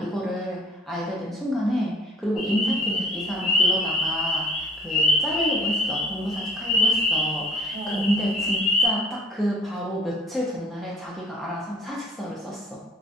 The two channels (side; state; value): both; normal; correlation 0.53